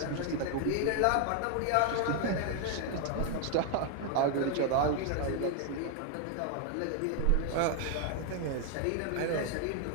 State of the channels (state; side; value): different; both; correlation 0.00